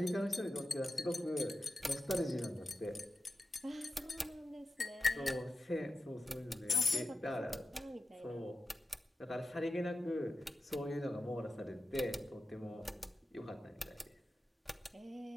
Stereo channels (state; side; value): normal; both; correlation 0.92